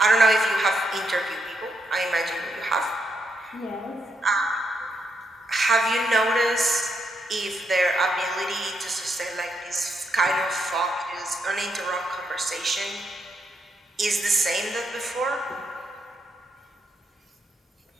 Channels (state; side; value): normal; both; correlation 0.80